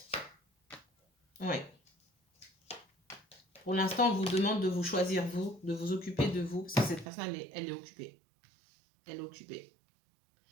Ouais. Pour l'instant, on vous demande de vous choisir vous, de vous occuper de vous, parce que cette personne, elle est occupée. Elle est occupée.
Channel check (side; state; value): left; drops out; at 7.1 s